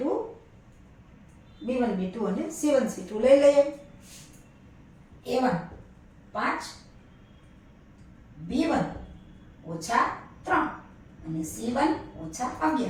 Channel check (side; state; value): both; identical; correlation 1.00